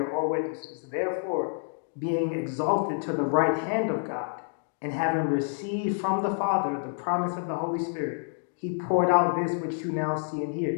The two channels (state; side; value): silent; right; digital silence